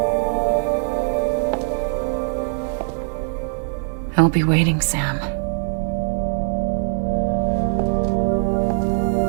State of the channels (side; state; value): left; silent; 65 dB below the other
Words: I'll be waiting, Sam.